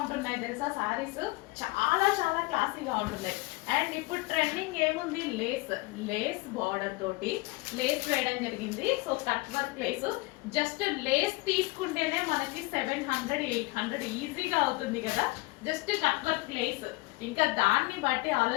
తెలుసా సారీస్, చాలా చాలా క్లాసీగా ఉంటున్నాయి. అండ్ ఇప్పుడు ట్రెండింగ్ ఏముంది, లేస్ లేస్ బార్డర్ తోటి లేస్ వేయడం జరిగింది. So cut work lace, just lace తీసుకుంటేనే మనకి 700 800 ఈజీగా అవుతుంది కదా. జస్ట్ కట్ వర్క్ లేస్, ఇంకా దాన్ని బట్టి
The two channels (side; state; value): right; quieter; 23.6 dB